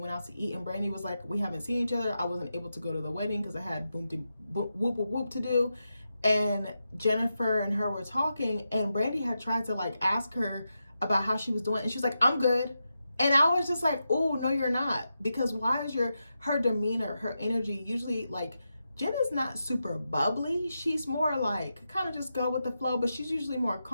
out to eat, and Brandy was like, we haven't seen each other. I wasn't able to go to the wedding because I had whoop whoop whoop to do. And Jennifer and her were talking, and Brandy had tried to like ask her about how she was doing, and she's like, I'm good. And I was just like, oh, no, you're not. Because why is her demeanor, her energy, usually like, Jenna's not super bubbly. She's more like, kind of just go with the flow, but she's usually more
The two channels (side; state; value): both; inverted; correlation -0.88